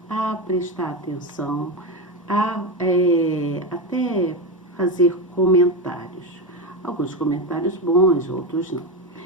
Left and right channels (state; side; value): normal; both; correlation 0.14